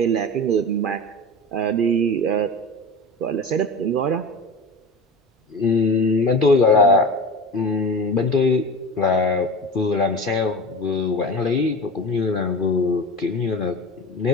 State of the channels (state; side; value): normal; both; correlation 0.31